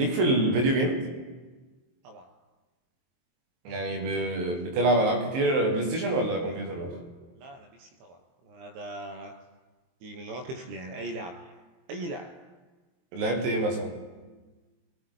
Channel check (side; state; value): left; late; 23 ms